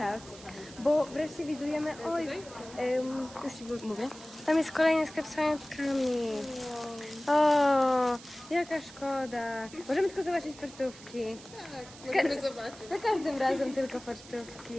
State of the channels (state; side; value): noise; right; hiss, 18 dB below the sound